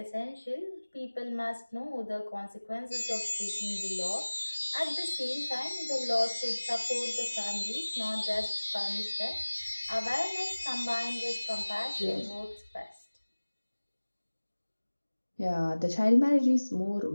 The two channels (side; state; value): both; inverted; correlation -1.00